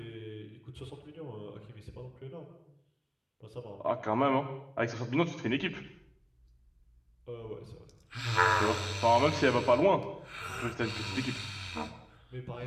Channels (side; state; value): both; identical; correlation 1.00